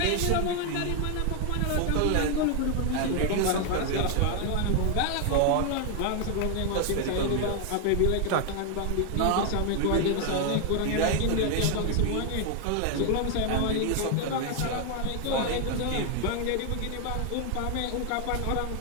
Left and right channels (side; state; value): both; different; correlation 0.00